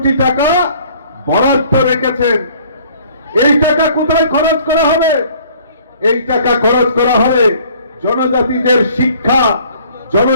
টাকা বরাদ্দ রেখেছেন। এই টাকা কোথায় খরচ করা হবে? এই টাকা খরচ করা হবে জনজাতিদের শিক্ষা,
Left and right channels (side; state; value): both; inverted; correlation -0.56